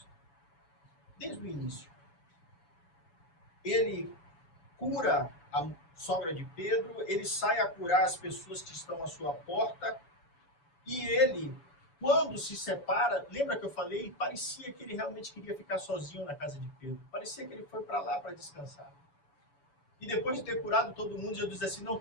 Desde o início. Ele cura a sogra de Pedro, ele sai a curar as pessoas que estão à sua porta, e ele, quando se separa, lembra que eu falei? Parecia que ele realmente queria ficar sozinho na casa de Pedro. Parecia que ele foi para lá para descansar. E depois de ter curado todo mundo, Jesus disse assim, não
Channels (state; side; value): late; right; 7.1 ms